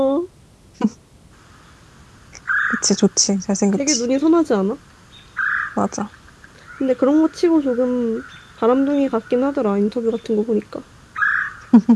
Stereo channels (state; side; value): identical; both; correlation 1.00